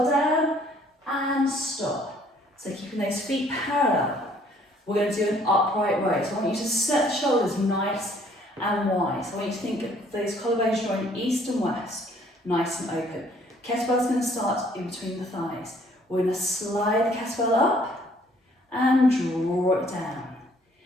down and stop. So keeping those feet parallel. We're going to do an upright row. So I want you to set the shoulders nice and wide. So I want you to think of those collarbones drawing east and west, nice and open. Kettlebell's going to start in between the thighs. We're going to slide the kettlebell up and draw it down.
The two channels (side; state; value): both; normal; correlation 0.60